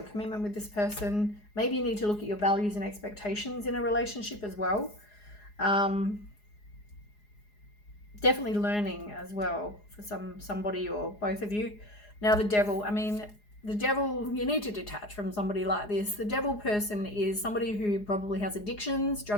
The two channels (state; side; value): late; right; 4.8 ms